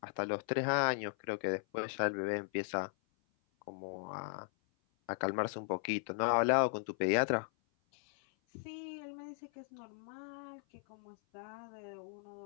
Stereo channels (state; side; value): silent; right; 53 dB below the other